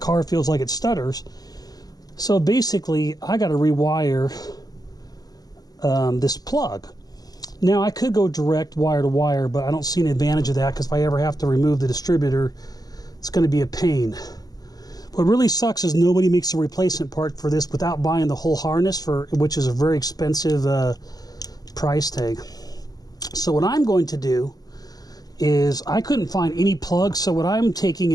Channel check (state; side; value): late; right; 0.19 ms